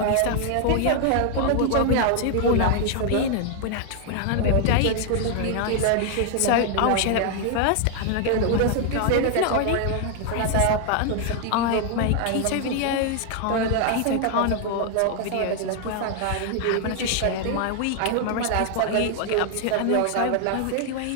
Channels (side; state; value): both; different; correlation 0.00